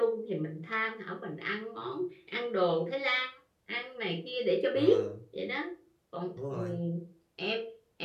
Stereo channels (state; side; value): identical; both; correlation 1.00